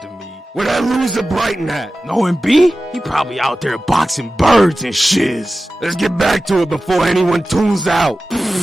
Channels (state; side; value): normal; both; correlation 0.95